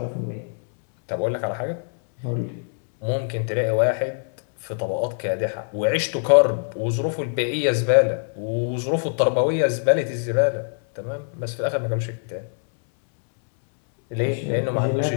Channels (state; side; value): silent; right; 63 dB below the other